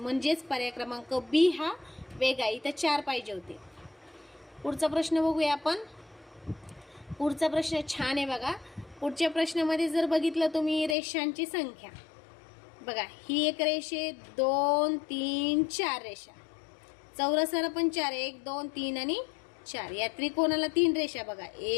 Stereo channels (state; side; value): drops out; right; at 11.0 s